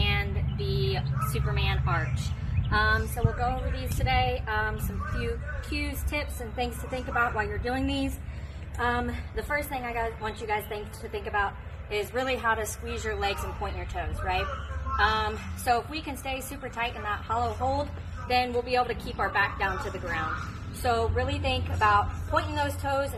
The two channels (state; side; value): identical; both; correlation 1.00